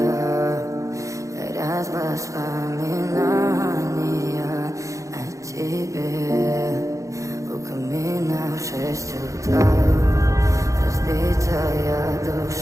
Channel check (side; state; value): left; late; 0.15 ms